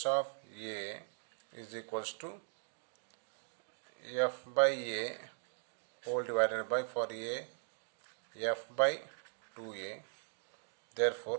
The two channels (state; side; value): silent; left; digital silence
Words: of A is equals to F by A whole divided by, for A, F by 2A.